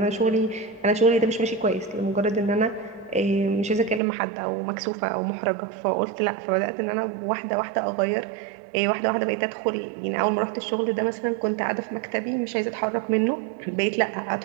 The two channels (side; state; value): left; drops out; at 4.0 s